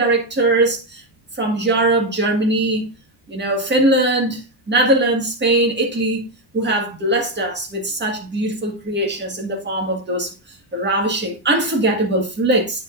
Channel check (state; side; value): normal; both; correlation 0.06